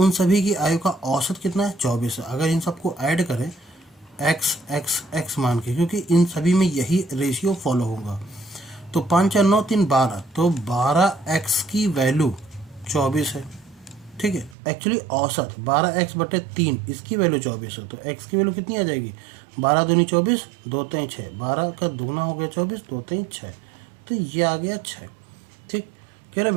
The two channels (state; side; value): drops out; left; at 14.6 s